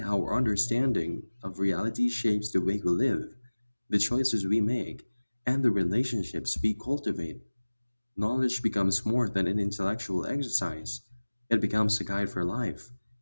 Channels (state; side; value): inverted; both; correlation -1.00